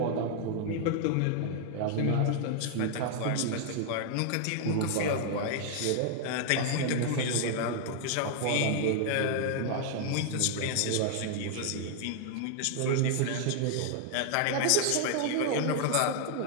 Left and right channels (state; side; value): different; both; correlation 0.00